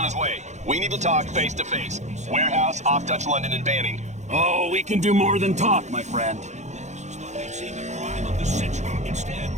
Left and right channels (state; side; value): late; left; 0.34 ms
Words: his way. We need to talk face to face. Warehouse, off-touch London, and Banning. Oh, we can do more than talk, my friend. They'd seen the crime of the century. Instead,